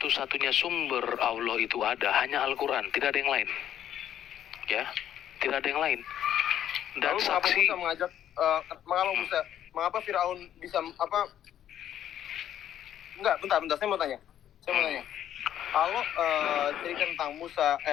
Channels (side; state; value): right; quieter; 10.8 dB